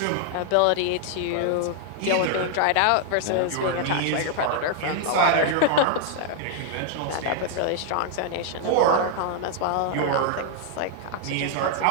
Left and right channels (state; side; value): different; both; correlation 0.00